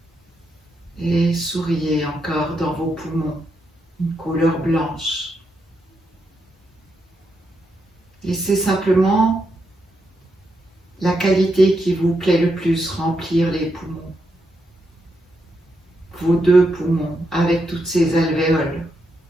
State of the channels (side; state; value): both; normal; correlation 0.82